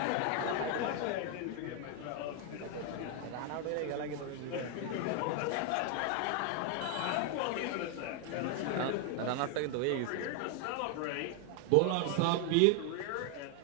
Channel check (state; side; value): different; both; correlation 0.00